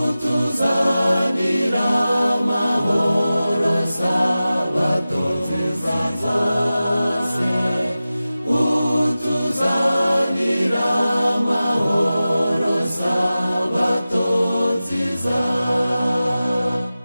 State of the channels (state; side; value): inverted; both; correlation -0.95